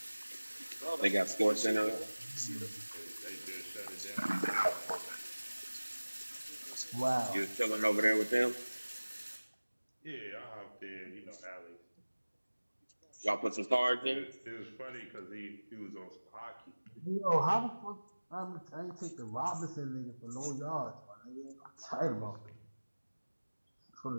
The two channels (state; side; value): inverted; both; correlation -1.00